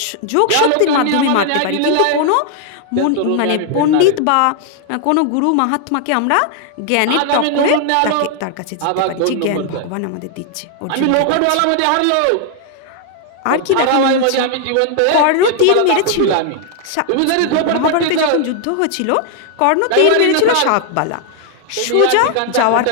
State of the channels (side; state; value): both; different; correlation 0.00